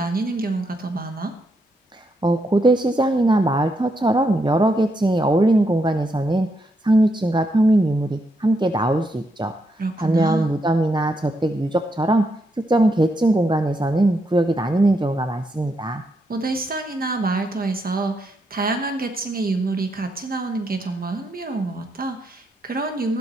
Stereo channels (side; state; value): both; normal; correlation 0.79